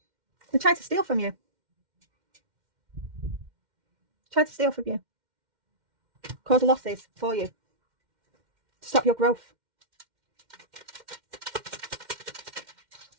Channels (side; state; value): left; late; 2.1 ms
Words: They tried to steal from you. Tried to steal from you. Cause losses for you. To stop your growth.